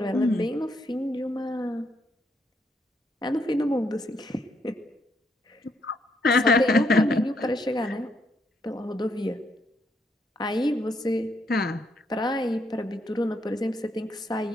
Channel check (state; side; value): normal; both; correlation 0.75